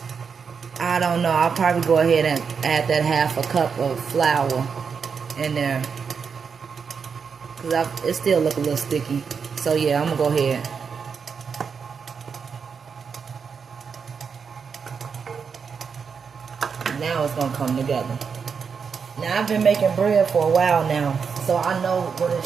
I don't know. I'll probably go ahead and add that 1/2 cup of flour in there. Because it still look a little sticky. So yeah, I'm going to go ahead. Now it's going to come together. Now I've been making bread for a while now. So I know what it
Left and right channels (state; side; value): quieter; left; 6.1 dB